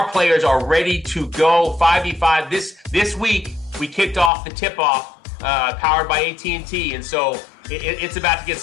players are ready to go 5v5. This week, we kicked off the tip-off powered by AT&T, and so it's about to get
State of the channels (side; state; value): right; drops out; at 4.3 s